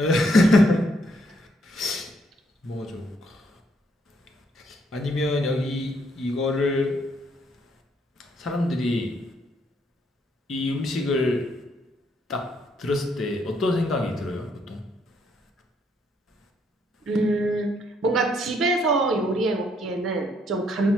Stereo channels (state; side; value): normal; both; correlation 0.71